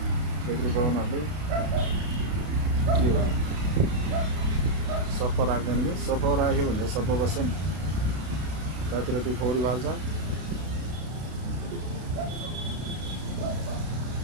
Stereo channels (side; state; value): left; late; 32 ms